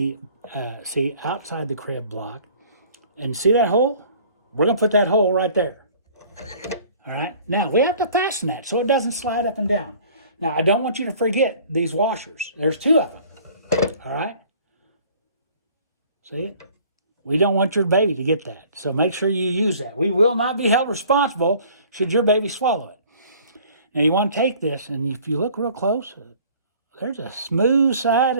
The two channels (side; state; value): both; inverted; correlation -0.52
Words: see, outside the crib block. And see that hole? We're going to put that hole right there. All right. Now, we have to fasten that so it doesn't slide up and down. Now, I don't want you to forget these washers. There's 2 of them. All right. See it? We don't want your baby to get that. So make sure you use that. We will not be held responsible should your baby swallow it. Now, you want to take this, and if you look real close, there's a smooth side